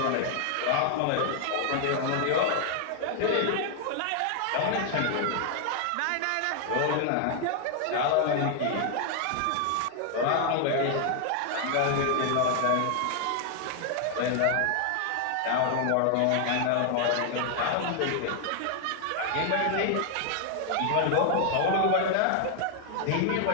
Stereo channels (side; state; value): both; different; correlation 0.00